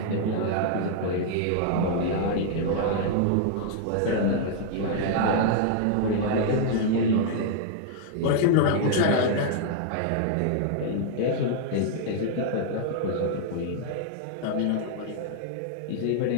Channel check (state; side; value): different; both; correlation -0.01